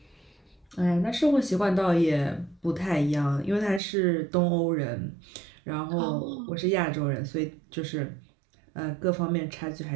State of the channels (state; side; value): drops out; left; at 3.8 s